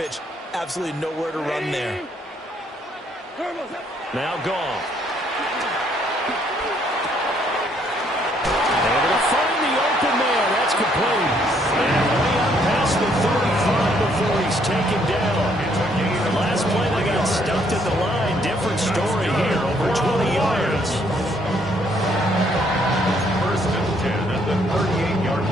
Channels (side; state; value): both; normal; correlation 0.68